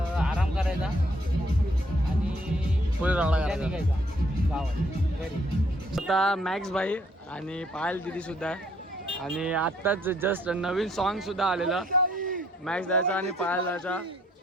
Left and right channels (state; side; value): normal; both; correlation 0.66